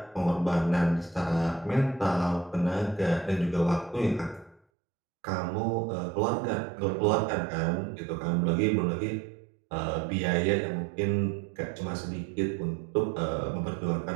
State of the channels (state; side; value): drops out; left; at 4.6 s